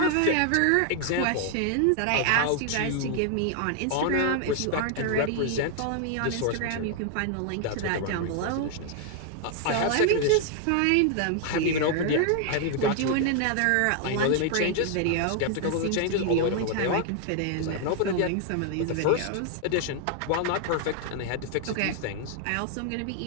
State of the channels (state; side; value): different; both; correlation 0.00